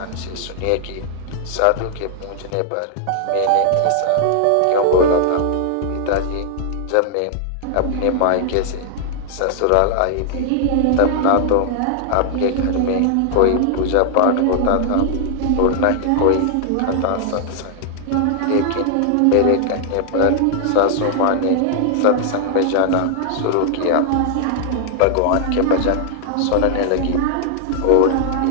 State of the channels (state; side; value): different; both; correlation 0.00